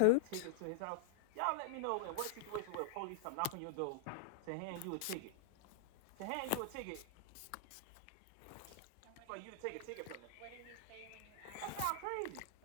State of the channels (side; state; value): both; different; correlation -0.01